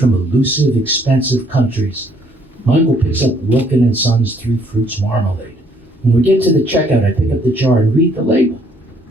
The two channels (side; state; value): both; normal; correlation 0.65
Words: elusive, expensive countries. My uncle picks up Wilkin & Son's 3 Fruits Marmalade. When we get to the checkout, I pick up the jar and read the label.